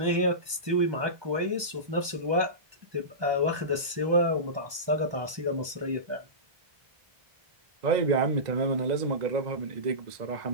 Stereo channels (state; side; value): late; left; 1.2 ms